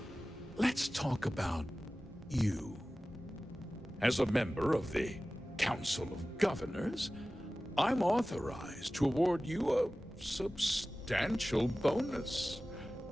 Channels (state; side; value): normal; both; correlation 0.96